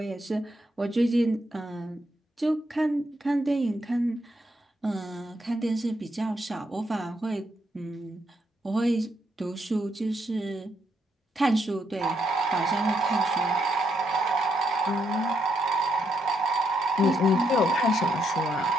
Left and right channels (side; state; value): both; normal; correlation 0.76